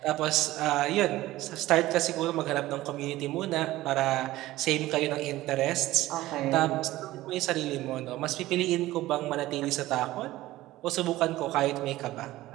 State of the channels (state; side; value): quieter; left; 16.6 dB